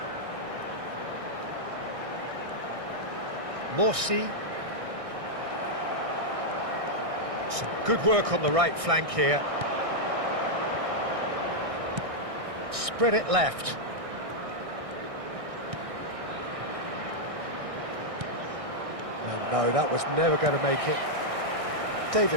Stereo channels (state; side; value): late; left; 1.6 ms